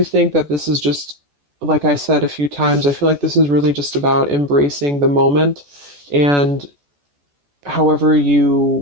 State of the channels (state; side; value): late; left; 14 ms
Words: think that this is just, like I said a few times, I feel like this is really just about embracing the moment, and however